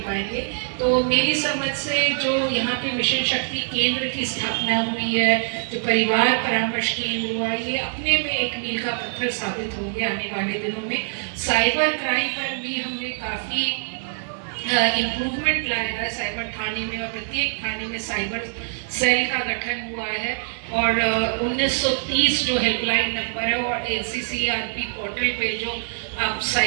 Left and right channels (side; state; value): left; silent; 63 dB below the other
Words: पाएंगे। तो मेरी समझ से जो यहाँ पे मिशन शक्ति केंद्र की स्थापना हुई है, जो परिवार परामर्श केंद्र हुआ, ये अपने में एक मील का पत्थर साबित होंगे आने वाले दिनों में। साइबर क्राइम पर भी हमने काफ़ी इम्प्रूवमेंट लाया है साइबर थाने में, और प्रत्येक थाने में साइबर सेल का गठन हुआ है और 1930 जो हेल्पलाइन नंबर है और NCCRP पोर्टल पे जो आप